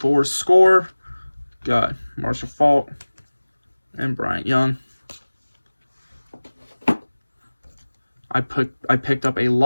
Score, got Marshall Faulk and Bryant Young. I picked up a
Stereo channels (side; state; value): both; inverted; correlation -1.00